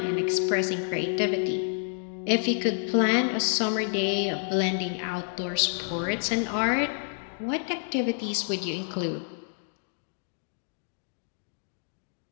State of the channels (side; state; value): right; silent; digital silence